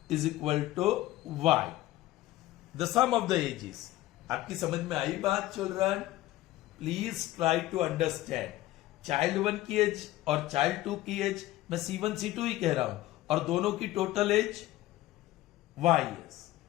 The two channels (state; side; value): quieter; right; 16.0 dB